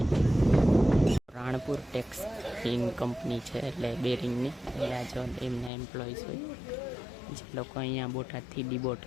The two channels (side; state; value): right; drops out; at 5.7 s